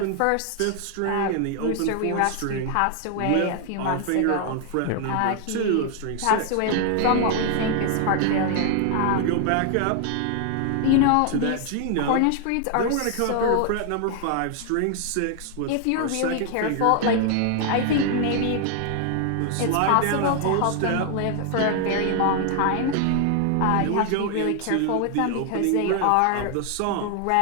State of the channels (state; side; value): different; both; correlation 0.00